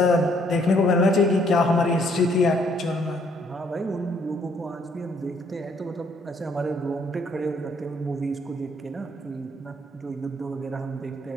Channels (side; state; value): both; normal; correlation 0.66